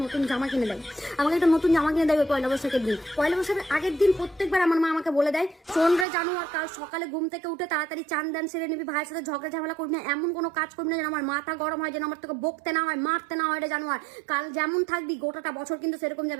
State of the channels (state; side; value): drops out; left; at 6.1 s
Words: নতুন জামা কিনে দেয়। আমাকে একটা নতুন জামা কিনে দেয় ওই পয়লা বৈশাখের দিন। পয়লা বৈশাখের আগের দিন প্রত্যেকবার আমার মা আমাকে বলে দেয়, শোন রে জানো, আর কাল সকালে ঘুম থেকে উঠে তাড়াতাড়ি চান দান সেরে নিবি, ভাইয়ের সাথে ঝগড়া ঝামেলা করবি না, এমন কোনো কাজ করবি না যেন আমার মাথা গরম হয়, যেন আমার তোকে বকতে না হয়, মারতে না হয় রে জানো। আর কাল যেমন থাকবি গোটাটা বছর কিন্তু সেরকম